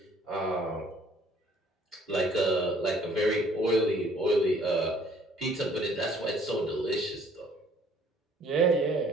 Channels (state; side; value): normal; both; correlation 0.59